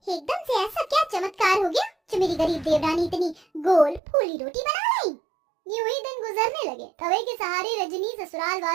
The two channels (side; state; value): left; drops out; at 4.0 s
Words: एकदम से ऐसा क्या चमत्कार हो गया जो मेरी गरीब देवरानी इतनी गोल फूली रोटी बना लाई। यूं ही दिन गुजरने लगे। तवे के सहारे रजनी ससुराल